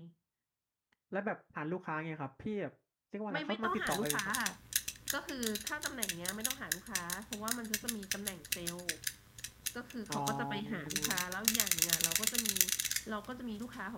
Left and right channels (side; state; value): both; identical; correlation 1.00